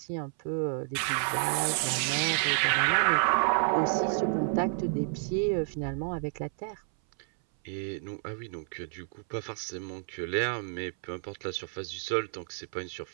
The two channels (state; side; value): silent; left; 58 dB below the other